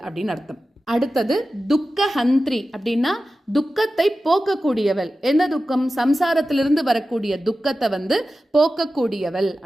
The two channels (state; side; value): normal; both; correlation 0.94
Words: அப்படின்னு அர்த்தம். அடுத்தது துக்கஹந்திரி அப்படின்னா துக்கத்தை போக்கக்கூடியவள். என்ன துக்கம், சம்சாரத்திலிருந்து வரக்கூடிய துக்கத்தை வந்து போக்கக்கூடியவள்